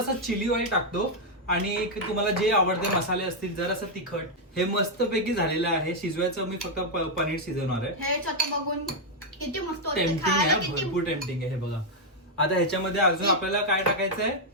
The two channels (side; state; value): both; normal; correlation -0.01